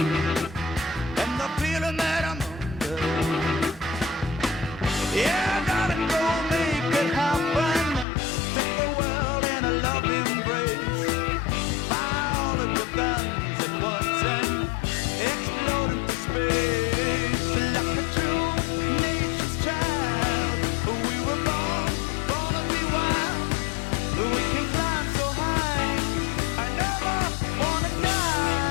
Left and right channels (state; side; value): drops out; right; at 8.1 s